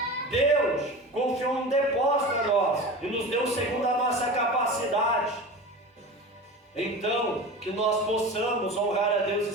Deus confiou um depósito a nós e nos deu segundo a nossa capacidade. Então, que nós possamos honrar a Deus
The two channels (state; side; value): normal; both; correlation 0.31